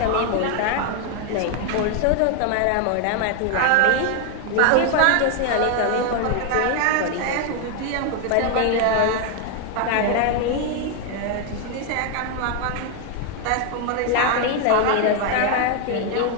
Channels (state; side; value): different; both; correlation 0.01